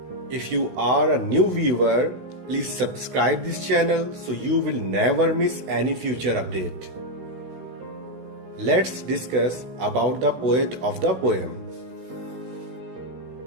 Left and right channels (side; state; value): left; late; 16 ms